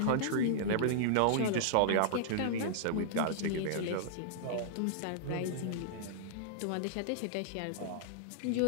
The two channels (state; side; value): different; both; correlation -0.02